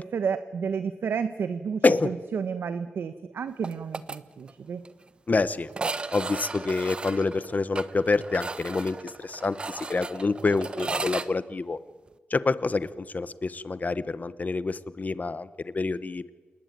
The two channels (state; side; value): normal; both; correlation 0.84